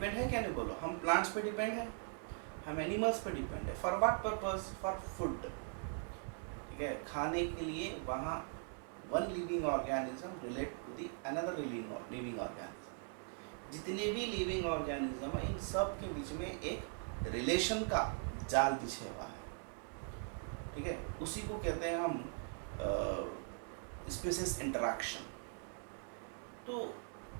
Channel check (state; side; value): silent; left; 51 dB below the other